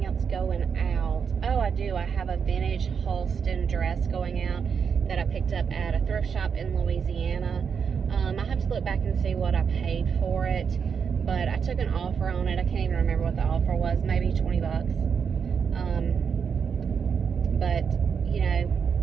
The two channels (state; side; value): quieter; left; 6.6 dB